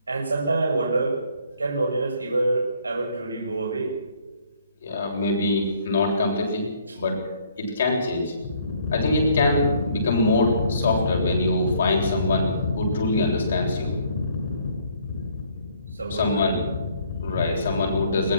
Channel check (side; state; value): both; inverted; correlation -0.63